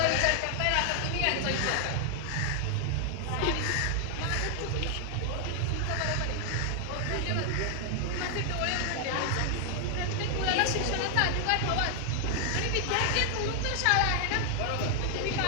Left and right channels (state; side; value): different; both; correlation 0.00